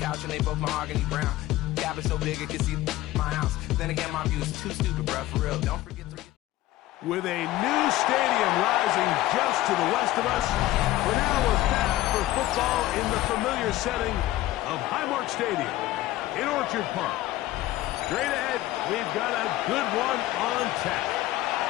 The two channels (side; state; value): right; quieter; 16.0 dB